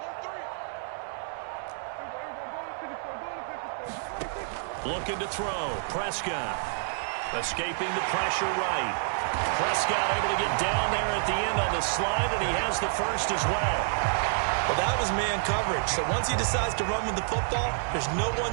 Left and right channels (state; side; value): silent; left; digital silence